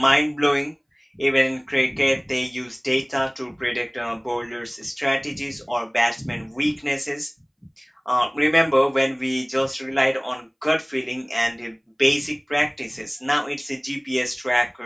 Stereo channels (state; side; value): identical; both; correlation 1.00